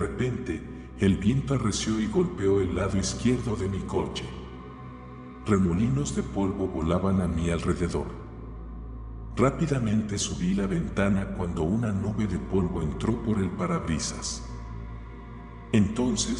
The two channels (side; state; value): both; identical; correlation 1.00